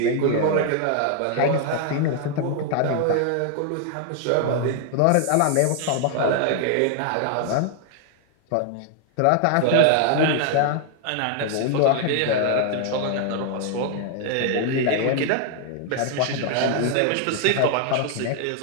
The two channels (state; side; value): different; both; correlation 0.00